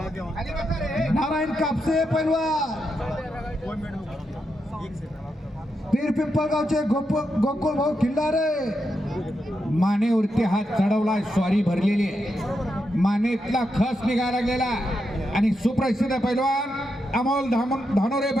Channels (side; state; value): both; normal; correlation 0.84